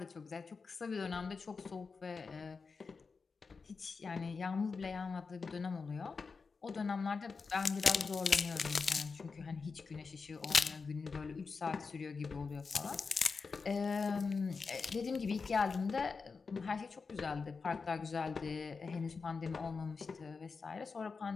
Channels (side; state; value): right; quieter; 4.8 dB